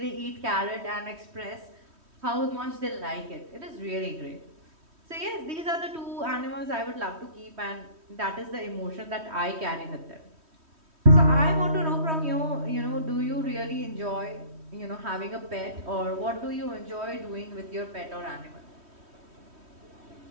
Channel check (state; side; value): late; left; 3.1 ms